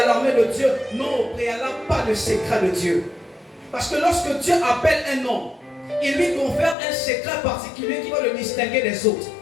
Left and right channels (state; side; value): drops out; right; at 6.8 s